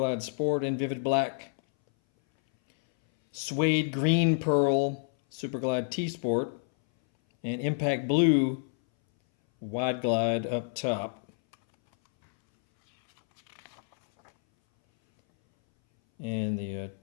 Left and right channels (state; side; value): silent; right; 59 dB below the other